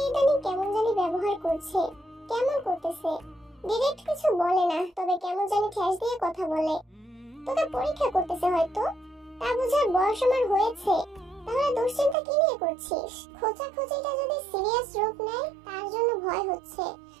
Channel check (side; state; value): left; drops out; at 12.2 s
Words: ইদানিং কেমন জানি ব্যবহার করছে। কেমন করতেছে? ডিরেক্ট কিছু বলে না, তবে কেমন জানি ঠেস দিয়ে কথা বলে। তোকে পরীক্ষা করতেছে হয়তো, তা বুঝার বয়স আমার হয়েছে। তাহলে দুশ্চিন্তা কি নিয়ে করছিস? খোঁচাখুচিটা যদি সিরিয়াস রূপ নেয় তার জন্য ভয় হচ্ছে।